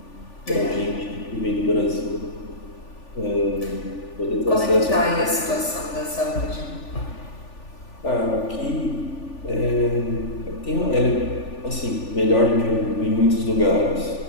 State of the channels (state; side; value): late; right; 3.4 ms